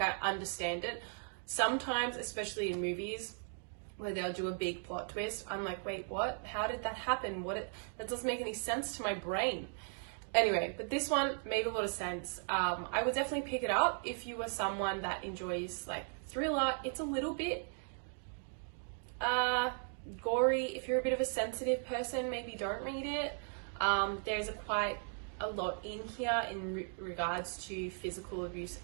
understand it. Sometimes, especially in movies, where they'll do a big plot twist, I'm like, wait, what? How did that happen? That doesn't make any sense to my brain. Anyway, but this one made a lot of sense. I would definitely pick it up if you were someone that enjoys like thriller. It's a little bit gory. If you're a bit of a sensitive person, maybe don't read it. There's quite a lot in here in regards to physical abuse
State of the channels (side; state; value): left; silent; 53 dB below the other